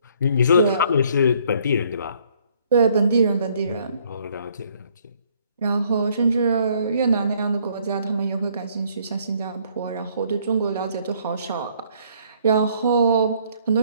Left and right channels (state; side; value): inverted; both; correlation -0.64